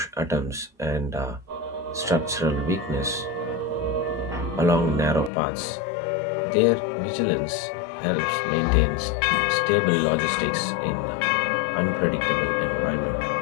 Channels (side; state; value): right; drops out; at 5.3 s